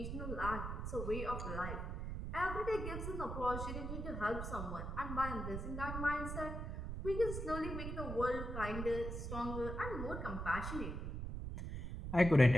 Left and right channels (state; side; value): noise; right; rumble, 4 dB below the sound